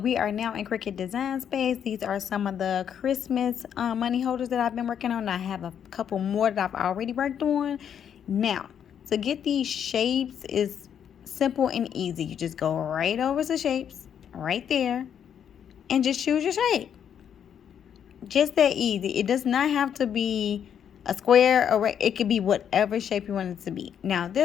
are now in Cricut Design Space. These are some of the Christmas money holders that I've been working on. I have a couple more that I've already worked on. Now, to get these shapes is simple and easy. You just go right over to shapes, right there, and just choose your shape. Just that easy. It does not have to be a square or it could be whatever shape you want it to be. Now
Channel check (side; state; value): right; quieter; 8.6 dB